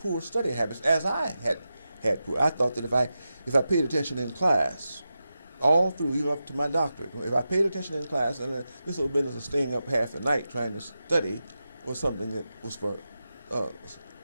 study habits, as I had poor. I thought that if I paid attention in class, all through, even up to my doctorate, if I paid attention in class, and this little business of staying up half the night trying to study was something that was for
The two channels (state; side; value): inverted; both; correlation -0.91